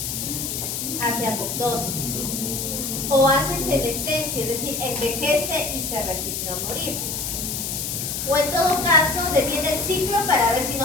Hace apoptosis o hace senescencia, es decir, envejece y se resigna a morir. O en todo caso, detiene el ciclo para ver si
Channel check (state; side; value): noise; left; hiss, 3 dB below the sound